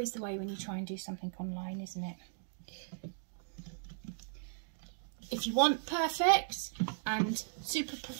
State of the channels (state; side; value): silent; left; digital silence